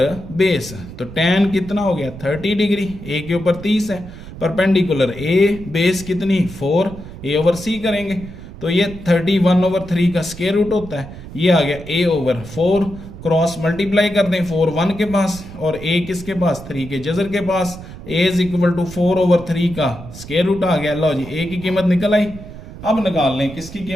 base. तो tan कितना हो गया 30 डिग्री, ए के ऊपर 30 है, परपेंडिकुलर ए बेस कितनी 4, ए ओवर सी करेंगे तो ये 31/3 का स्क्वायर रूट होता है। ये आ गया a ओवर 4, क्रॉस मल्टीप्लाई कर दें 4 1 के पास और a किसके पास 3 के जजर के पास, a इज इक्वल टू 4/3 का स्क्वायर रूट आ गया। लो जी a की कीमत निकल आई। अब निकाल लें किसकी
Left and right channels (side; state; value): right; noise; rumble, 14 dB below the sound